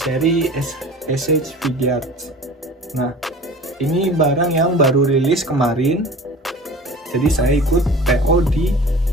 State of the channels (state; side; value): normal; both; correlation 0.40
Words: SH Figuarts. Nah, ini barang yang baru rilis kemarin. Jadi saya ikut PO di